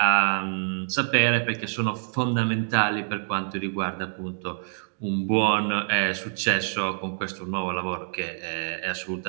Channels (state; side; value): silent; left; digital silence